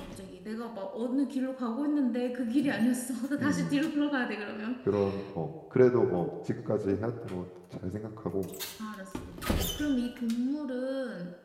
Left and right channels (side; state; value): both; identical; correlation 1.00